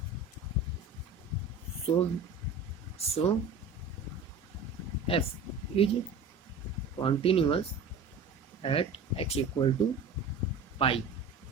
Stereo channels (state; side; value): quieter; left; 4.1 dB